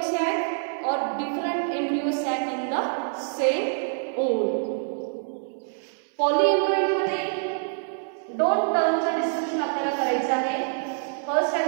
sac or different embryo sac in the same ovule. पॉलीएम्ब्रॉयनी मध्ये दोन टर्मचं डिस्कशन आपल्याला करायचं आहे. फर्स्ट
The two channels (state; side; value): silent; left; 61 dB below the other